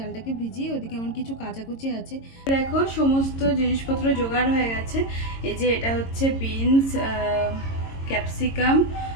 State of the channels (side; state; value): right; late; 22 ms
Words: ভিজিয়ে ওদিকে আমার কিছু কাচাকুচি আছে। দেখো সমস্ত জিনিসপত্র জোগাড় হয়ে গেছে। এই যে এটা হচ্ছে বিনস, ক্যাপসিকাম,